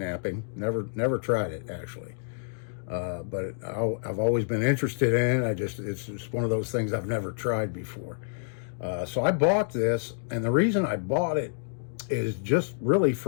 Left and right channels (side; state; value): right; silent; digital silence